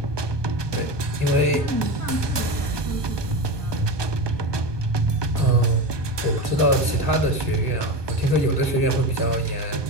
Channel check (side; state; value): left; late; 1.2 ms